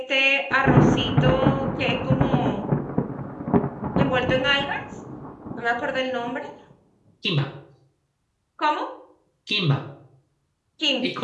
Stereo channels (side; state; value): both; identical; correlation 1.00